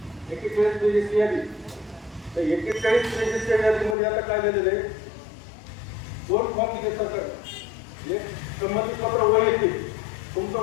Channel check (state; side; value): drops out; right; at 4.0 s